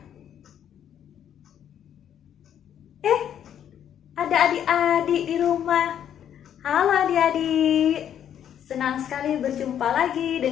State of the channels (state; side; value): quieter; right; 9.7 dB